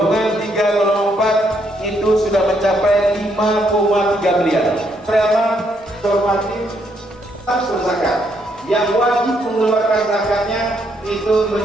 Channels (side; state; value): both; normal; correlation 0.74